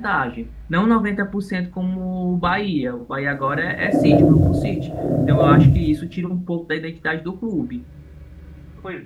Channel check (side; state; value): both; identical; correlation 1.00